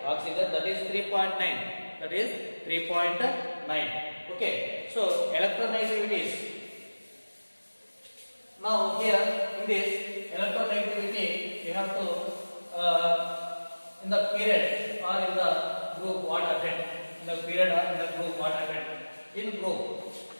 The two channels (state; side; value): inverted; both; correlation -1.00